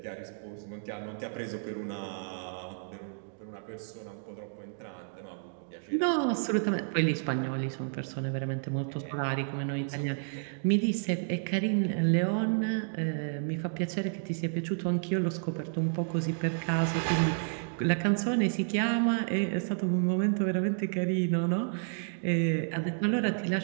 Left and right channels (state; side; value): silent; left; digital silence